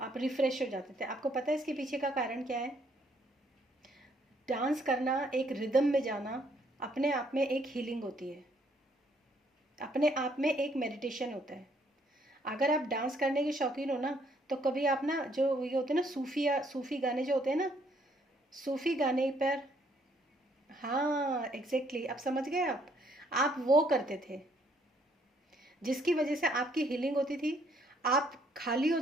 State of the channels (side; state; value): both; normal; correlation 0.68